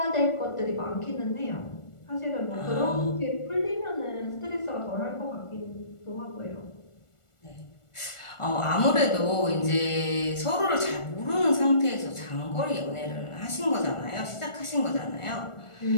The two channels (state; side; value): late; right; 1.4 ms